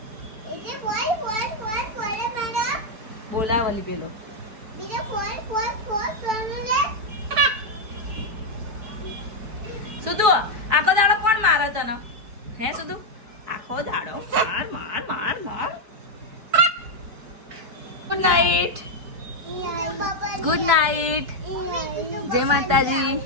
बोला वाली पेलो सुधु आखो दाड़ो कोण मारे तने हे सुधु आखो दाड़ो मार मार मार मार गुड नाइट गुड नाइट जय माता जी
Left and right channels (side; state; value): left; late; 4.6 ms